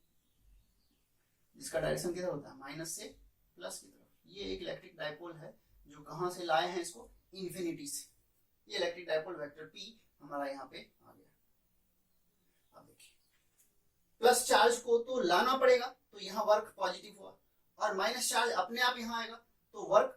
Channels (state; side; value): identical; both; correlation 1.00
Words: जिसका डायरेक्शन किधर होता है? माइनस से प्लस की तरफ। ये एक इलेक्ट्रिक डाइपोल है जो कहां से लाए हैं इसको? इंफिनिटी से। ये इलेक्ट्रिक डाइपोल वेक्टर पी हमारा यहाँ पे आ गया। अब देखिए, प्लस चार्ज को तो लाना पड़ेगा, तो यहाँ वर्क पॉजिटिव हुआ, और माइनस चार्ज अपने आप यहाँ आएगा तो